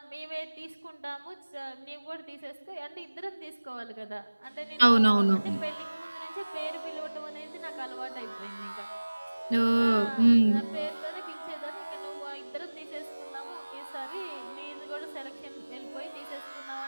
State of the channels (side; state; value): both; inverted; correlation -1.00